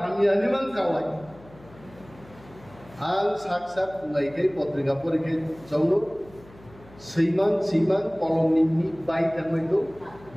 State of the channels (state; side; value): noise; left; hum, 23 dB below the sound